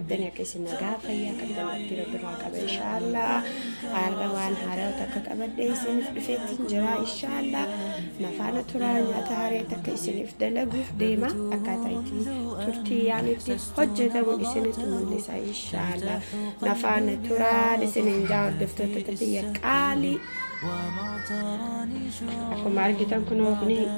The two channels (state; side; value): inverted; both; correlation -1.00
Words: akka isin nagaa fayyaa qabdan itti rabbiraa qaba inshaallah. Har'a waan haaraa takka qabadhee isiniif dhufeetiin jira inshaallah. Nafaana turaa nyaata haaraa takka isiniif dalaguuf deema. Akkaataa itti turtii yaanitti hojjetamu isinitti mul'isa inshaallah. Nafaana turaa isiniin jaa hordoftoota biyya qaalii. Akkuma argitan kunoo kuni